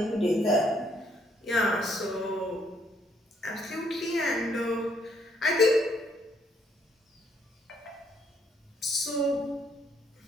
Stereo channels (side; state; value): both; normal; correlation 0.70